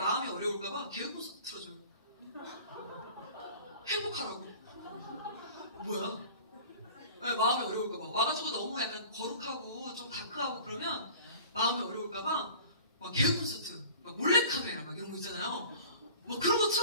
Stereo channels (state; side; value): inverted; both; correlation -0.43